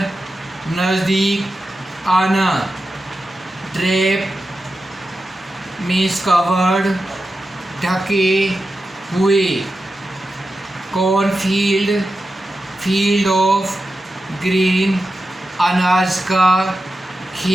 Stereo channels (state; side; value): normal; both; correlation 0.91